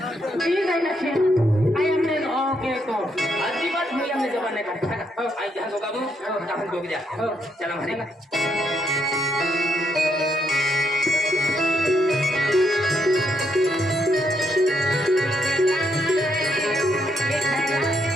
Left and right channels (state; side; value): normal; both; correlation 0.77